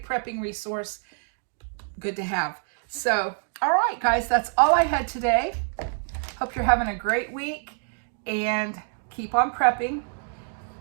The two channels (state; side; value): silent; left; 56 dB below the other